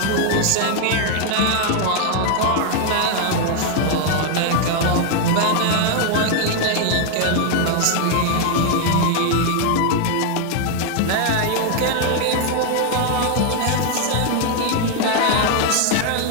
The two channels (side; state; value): both; different; correlation 0.00